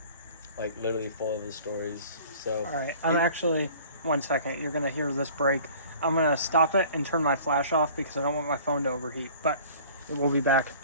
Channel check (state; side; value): inverted; both; correlation -0.48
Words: Literally full of his stories. So. All right. I'm actually, 1 second. You're going to hear this break. I'm going to stop it and turn my flash off because I don't want my phone to overheat. But it will be back